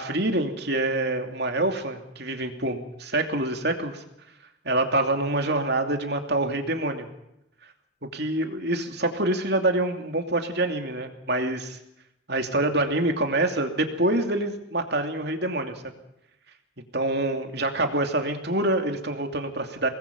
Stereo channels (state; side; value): normal; both; correlation -0.02